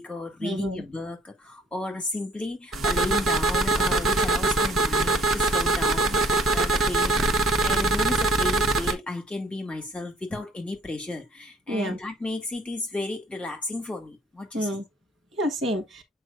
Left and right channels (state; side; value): normal; both; correlation 0.57